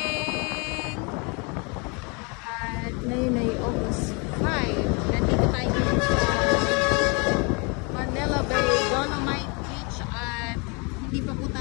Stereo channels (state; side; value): quieter; right; 31.7 dB